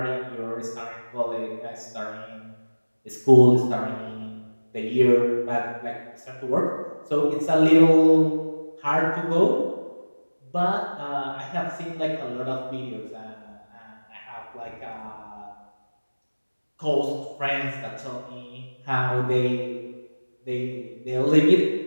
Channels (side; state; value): both; inverted; correlation -1.00